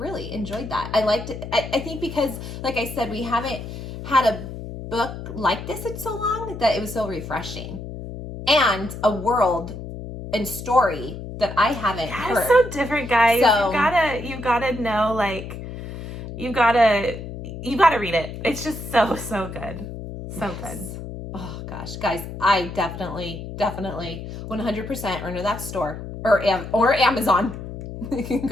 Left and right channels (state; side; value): noise; left; hum, 9 dB below the sound